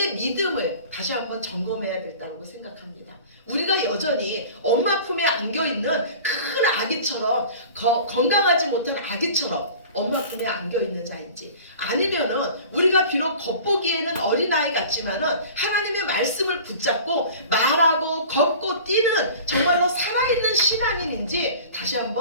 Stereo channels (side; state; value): both; inverted; correlation -0.42